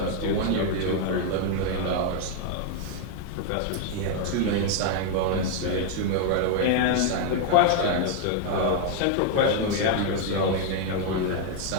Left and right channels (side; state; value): both; different; correlation 0.00